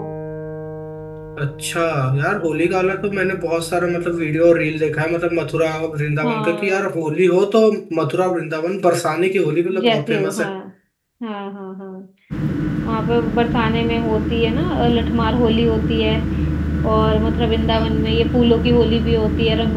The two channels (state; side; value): identical; both; correlation 1.00